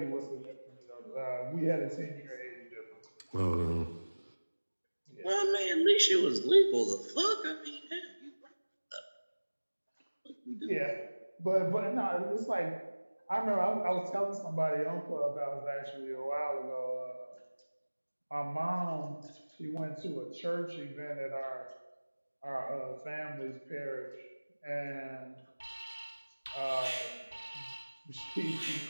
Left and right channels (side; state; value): both; inverted; correlation -1.00